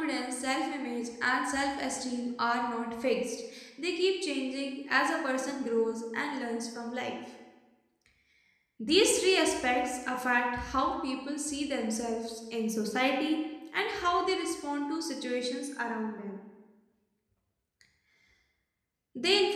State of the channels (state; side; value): identical; both; correlation 1.00